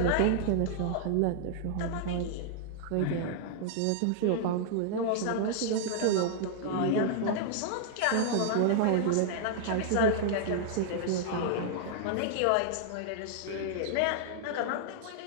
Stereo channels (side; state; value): both; different; correlation -0.01